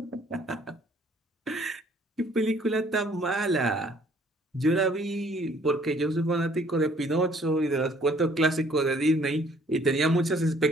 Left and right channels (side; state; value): both; normal; correlation 0.60